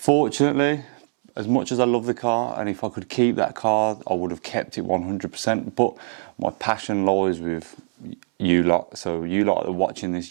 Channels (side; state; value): left; silent; 63 dB below the other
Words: as much as I love the car, and if I could keep that car, I would have kept it 100%. But my passion lies with you lot. So you lot that are watching